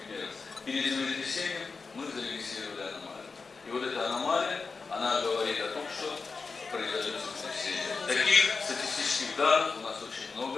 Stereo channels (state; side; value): quieter; right; 4.5 dB